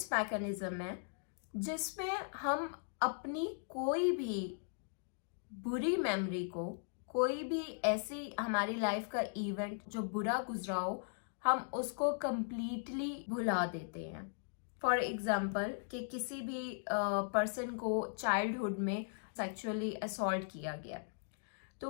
mechanism है जिसमें हम अपनी कोई भी बुरी मेमोरी को, कोई भी ऐसी हमारी लाइफ का इवेंट जो बुरा गुजरा हो, हम उसको कंप्लीटली भुला देते हैं. फॉर एग्जाम्पल कि किसी भी पर्सन को चाइल्डहुड में सेक्सुअली असॉल्ट किया गया,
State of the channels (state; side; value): silent; right; digital silence